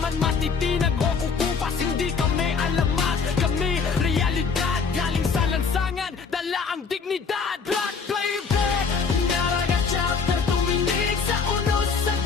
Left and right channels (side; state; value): right; quieter; 5.5 dB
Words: matitinag o kukupas. Hindi kami alamat, kami realidad. Galing sa lansangan, dala ang dignidad. Blood playback, Naragat Chapter, tumindig sa unos sa